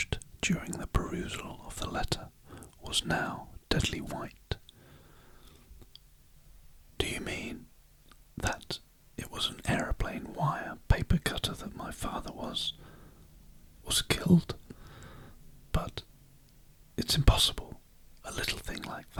during the perusal of the letter, was now deadly white. "Do you mean that it was an aeroplane wire paper cutter that my father was killed? But it's impossible, a little thing like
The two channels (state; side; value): identical; both; correlation 1.00